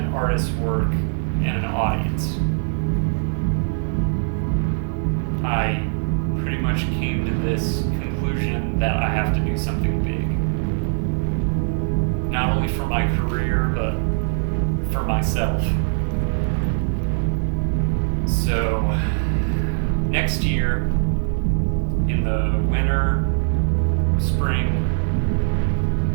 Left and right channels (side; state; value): left; silent; 64 dB below the other